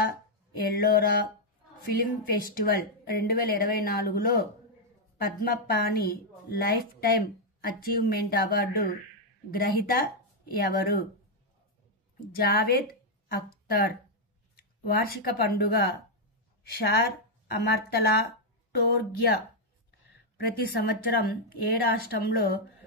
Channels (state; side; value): normal; both; correlation -0.02